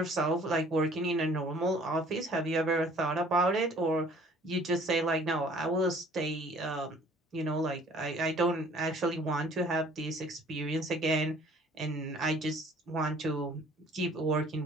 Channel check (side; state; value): both; normal; correlation 0.54